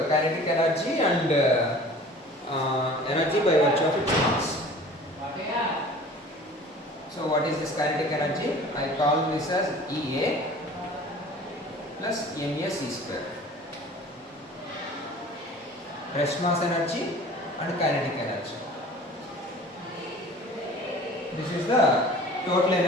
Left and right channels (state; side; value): normal; both; correlation 0.44